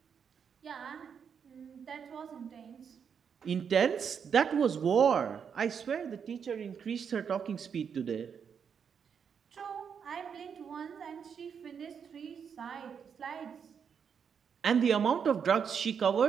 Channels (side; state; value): left; quieter; 7.0 dB